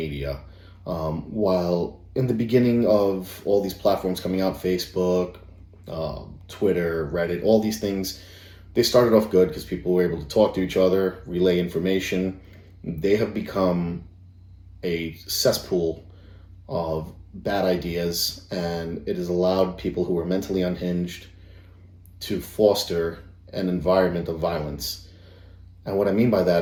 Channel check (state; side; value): identical; both; correlation 1.00